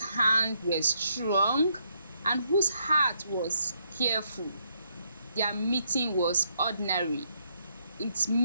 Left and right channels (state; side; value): inverted; both; correlation -0.75